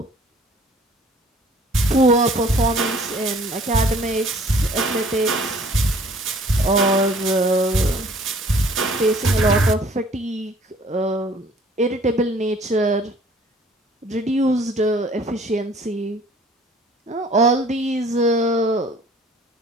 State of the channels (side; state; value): both; normal; correlation 0.54